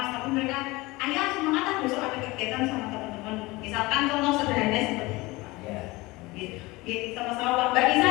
tapi mereka ayo semangat besok ada kegiatan sama teman-teman. Misalkan contoh sederhana seperti itu. Gitu, sama-sama Mbak Nisa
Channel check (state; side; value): quieter; right; 21.8 dB